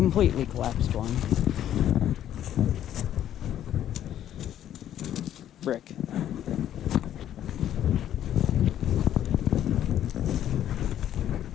collapsed one. Brick.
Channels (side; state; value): right; quieter; 11.2 dB